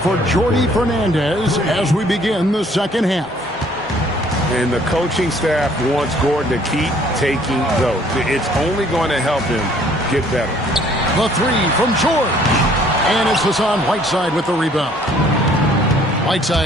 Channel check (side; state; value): both; normal; correlation 0.59